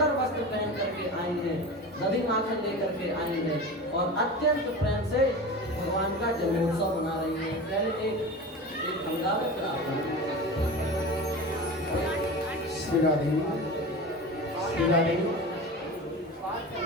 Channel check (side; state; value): both; normal; correlation 0.30